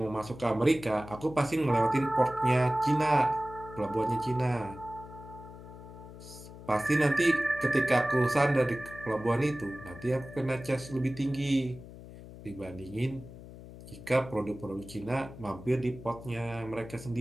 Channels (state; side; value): noise; left; hum, 15 dB below the sound